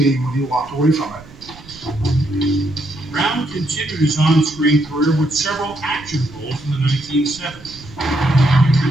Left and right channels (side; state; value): right; noise; rumble, 21 dB below the sound